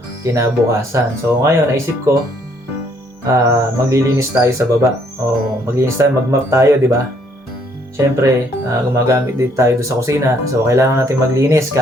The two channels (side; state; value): both; normal; correlation 0.67